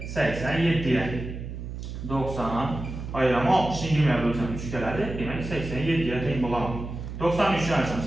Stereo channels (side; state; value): right; noise; hum, 8 dB below the sound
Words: 87'ye. 90 ayırama 60'ı 20'ye bölsəm 3 gələdi. Demək 87'ye teyin bulamam. 93 yansam